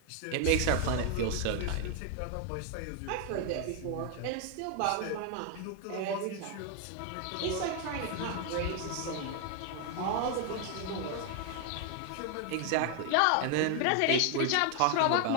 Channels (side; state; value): both; different; correlation 0.00